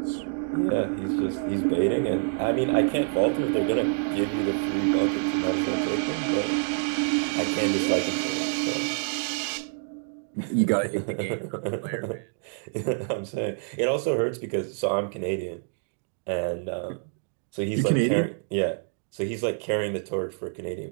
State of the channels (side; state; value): left; silent; digital silence